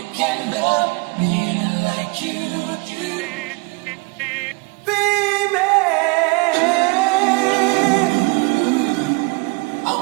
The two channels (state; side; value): quieter; left; 28.2 dB